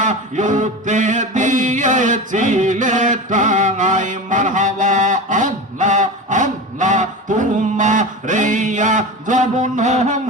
ইউতে দিয়েছিলে তাই মারহাবা আল্লাহ আল্লাহ তুমা রেয়া জবন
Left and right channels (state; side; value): normal; both; correlation 0.27